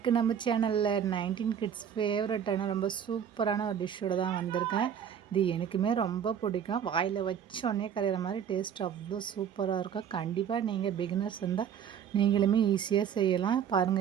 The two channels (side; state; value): left; quieter; 8.5 dB